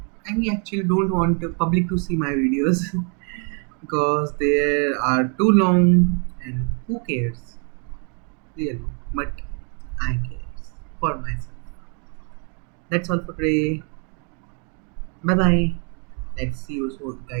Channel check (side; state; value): left; quieter; 38.9 dB